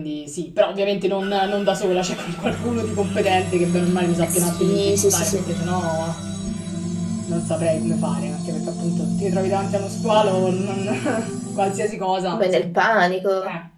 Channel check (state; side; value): identical; both; correlation 1.00